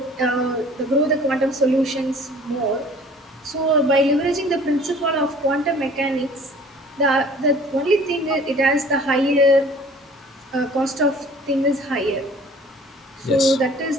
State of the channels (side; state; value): both; normal; correlation 0.50